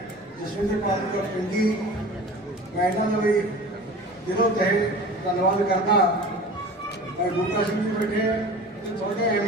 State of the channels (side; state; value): both; normal; correlation 0.39